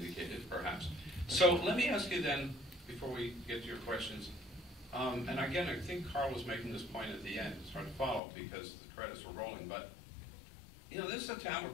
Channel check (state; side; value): drops out; right; at 8.2 s